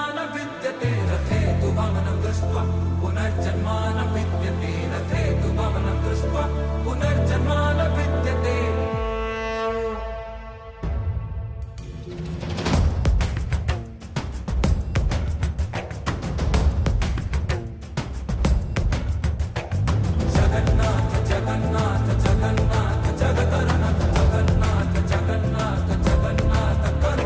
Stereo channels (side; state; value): both; identical; correlation 1.00